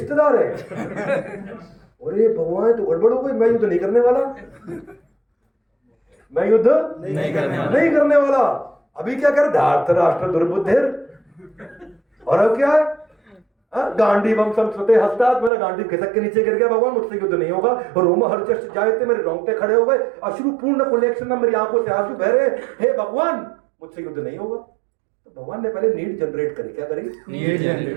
है, अरे भगवान तो गड़बड़ हो गई, मैं युद्ध नहीं करने वाला, मैं युद्ध नहीं करने वाला। अभी क्या कर, धार्तराष्ट्र दुर्बुद्धिर, और अब क्या है, गांडीवम संस्कृते हस्तात्, मेरा गांडीव खिसक के नीचे गिर गया, भगवान मुझसे युद्ध नहीं होगा। रोम हर्षश्च जायते, मेरे रोंगटे खड़े हो गए, अश्रु पूर्ण कुलेक्षण, मेरी आंखों से आंसू बह रहे, हे भगवान मुझसे युद्ध नहीं होगा। तो भगवान ने पहले नीड जनरेट करी। क्या करी? Need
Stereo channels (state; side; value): drops out; left; at 15.5 s